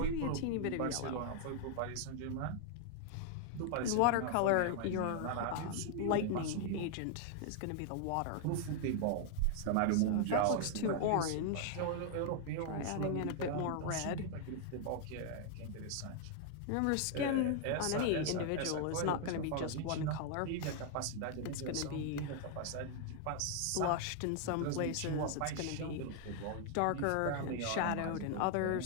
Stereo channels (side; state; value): both; different; correlation 0.00